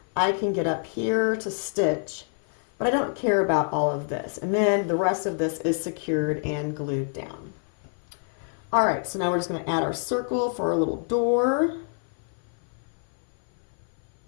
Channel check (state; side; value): silent; right; 57 dB below the other